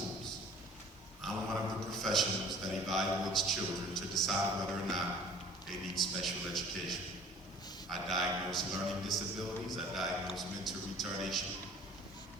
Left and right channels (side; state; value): both; normal; correlation 0.48